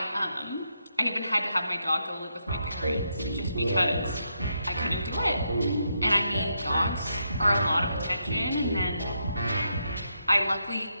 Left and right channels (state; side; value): inverted; both; correlation -0.80